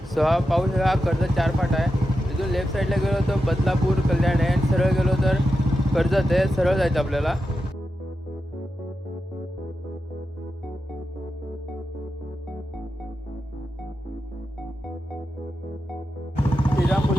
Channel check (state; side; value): normal; both; correlation 0.89